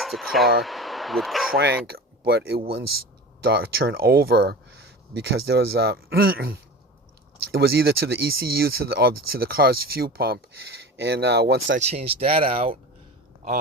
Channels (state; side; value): normal; both; correlation 0.33